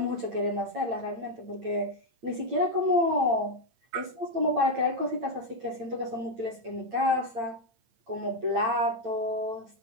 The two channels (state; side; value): late; left; 8.8 ms